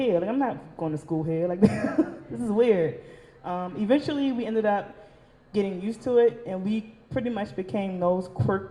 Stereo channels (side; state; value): both; identical; correlation 1.00